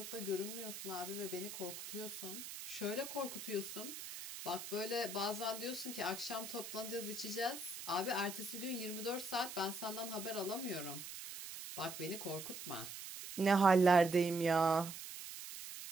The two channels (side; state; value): right; noise; hiss, 9 dB below the sound